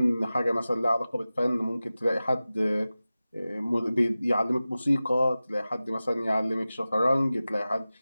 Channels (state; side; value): inverted; both; correlation -0.96